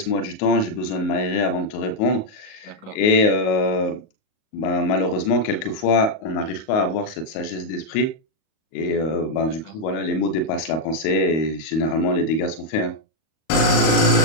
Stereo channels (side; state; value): right; late; 37 ms